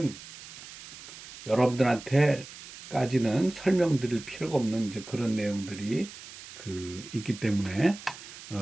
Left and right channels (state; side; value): noise; right; hiss, 15 dB below the sound